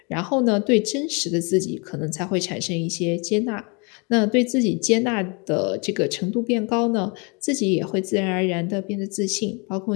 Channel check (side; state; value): right; quieter; 31.9 dB